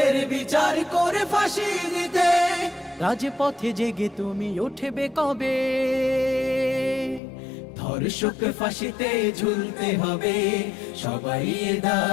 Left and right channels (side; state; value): right; drops out; at 7.2 s